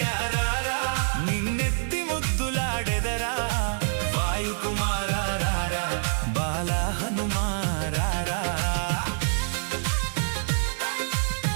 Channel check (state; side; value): silent; left; digital silence